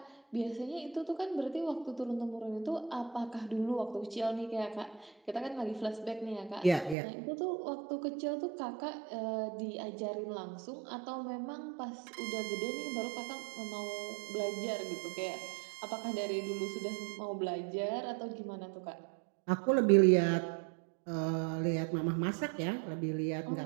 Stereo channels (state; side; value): drops out; left; at 7.0 s